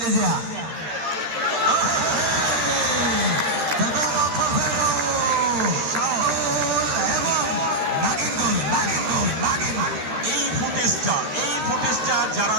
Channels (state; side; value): late; left; 13 ms